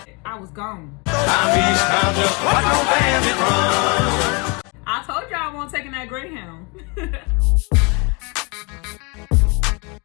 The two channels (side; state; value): right; quieter; 30.7 dB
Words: I was gone. I'm Eastbound, just like no bandit run. I told y'all I won't taking that Greyhound.